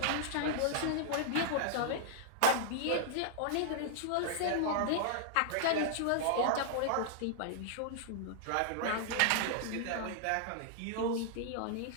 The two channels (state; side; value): different; both; correlation -0.01